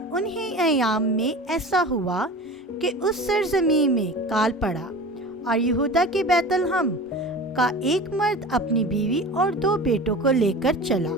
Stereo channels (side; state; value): both; normal; correlation 0.35